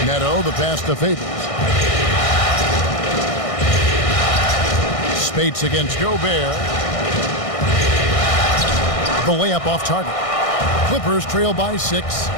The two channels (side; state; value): right; late; 1.6 ms